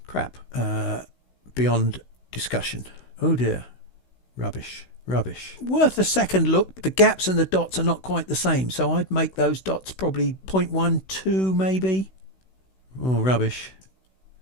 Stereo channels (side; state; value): right; late; 16 ms